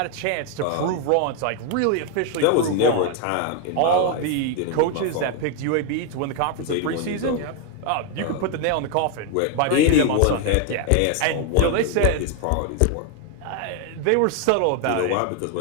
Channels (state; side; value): different; both; correlation 0.01